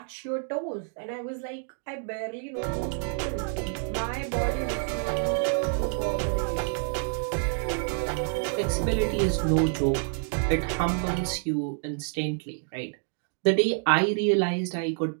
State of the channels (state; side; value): silent; left; 59 dB below the other